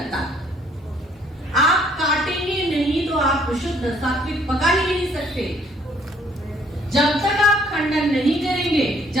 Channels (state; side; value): normal; both; correlation 0.63